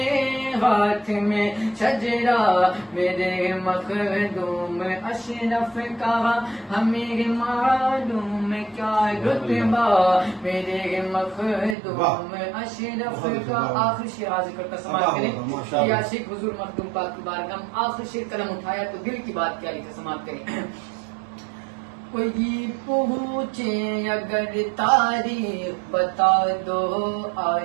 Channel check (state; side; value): drops out; left; at 11.8 s